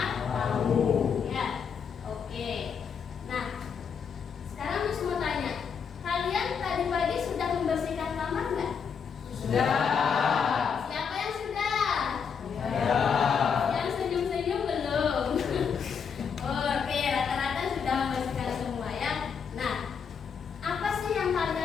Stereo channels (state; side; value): quieter; right; 6.6 dB